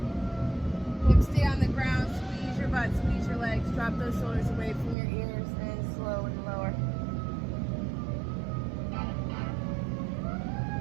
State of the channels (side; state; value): left; drops out; at 5.0 s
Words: Hips stay on the ground. Squeeze your butt, squeeze your legs. Drop those shoulders away from your ears and slowly lower.